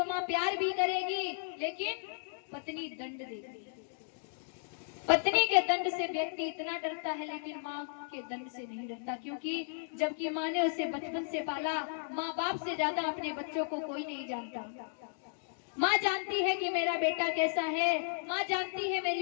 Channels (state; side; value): silent; right; digital silence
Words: माँ प्यार भी करेगी, लेकिन पत्नी दंड देगी। पत्नी के दंड से व्यक्ति इतना डरता है, लेकिन माँ के दंड से नहीं डरता, क्योंकि जबकि माँ ने उसे बचपन से पाला, माँ बाप से ज्यादा अपने बच्चों को कोई नहीं जानता। माँ जानती है कि मेरा बेटा कैसा है, माँ जानती है